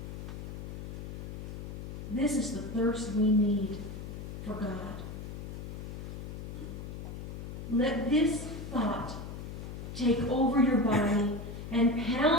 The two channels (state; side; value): noise; left; hum, 8 dB below the sound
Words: This is the thirst we need for God. Let this thought take over your body and